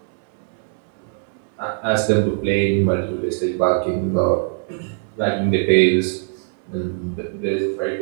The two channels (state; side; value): silent; left; 60 dB below the other